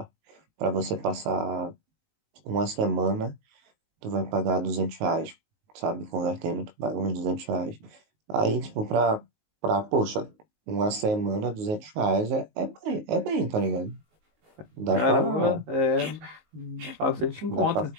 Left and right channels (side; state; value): left; late; 19 ms